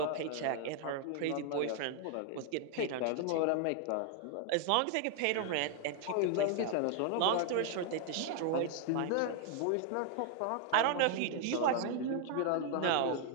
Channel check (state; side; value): different; both; correlation 0.00